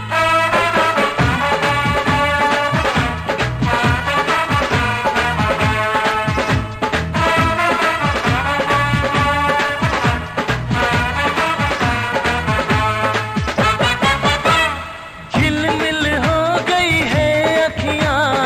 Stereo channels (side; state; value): both; identical; correlation 1.00